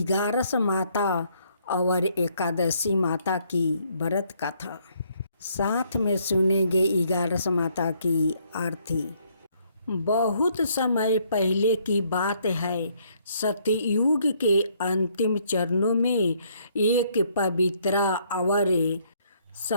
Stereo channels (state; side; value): inverted; both; correlation -0.68